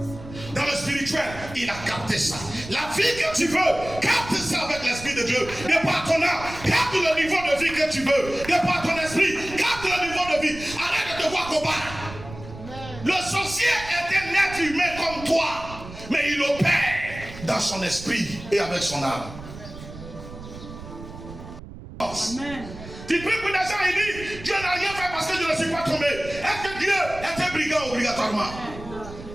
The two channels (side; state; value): right; noise; rumble, 14 dB below the sound